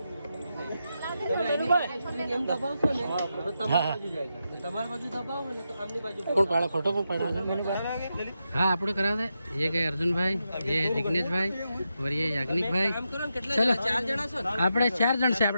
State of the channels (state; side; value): inverted; both; correlation -0.87